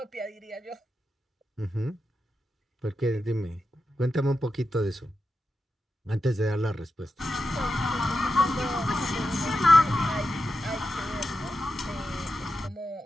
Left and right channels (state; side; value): normal; both; correlation 0.89